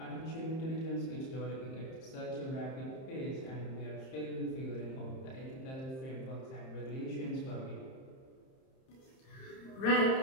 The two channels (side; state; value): right; late; 30 ms